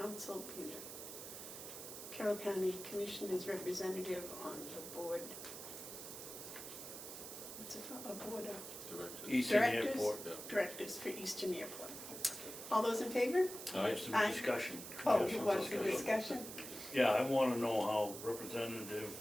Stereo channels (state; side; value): noise; right; hiss, 10 dB below the sound